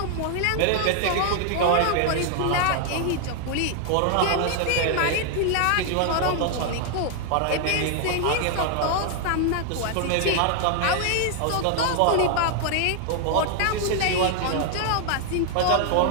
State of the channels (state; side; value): different; both; correlation 0.00